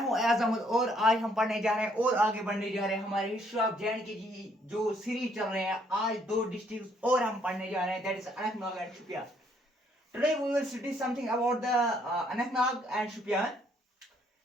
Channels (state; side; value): normal; both; correlation 0.68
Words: हूं एयाज अहमद और आज हम पढ़ने जा रहे हैं और आगे बढ़ने जा रहे हैं हमारे हिस्ट्री ऑफ जे की जो सीरीज चल रहे हैं। आज दो डिस्ट्रिक्ट और हम पढ़ने जा रहे हैं, that is Anantnag and Shopian. Today we will study something about the Anantnag and Shopian.